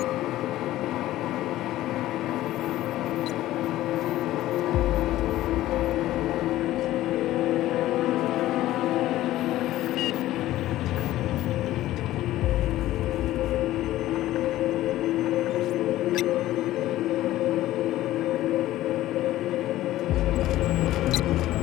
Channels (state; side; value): quieter; right; 15.0 dB